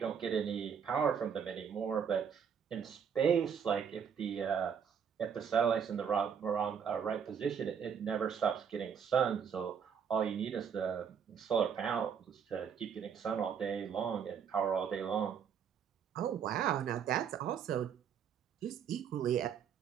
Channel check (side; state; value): left; quieter; 7.4 dB